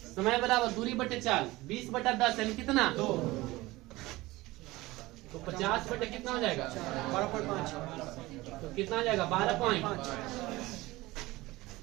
समय बराबर दूरी बटे चाल 20/10 यानी कितना? 2। तो 50 बटे कितना हो जाएगा? 12.5। तो कितना आ जाएगा? 12.5।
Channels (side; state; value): left; quieter; 19.7 dB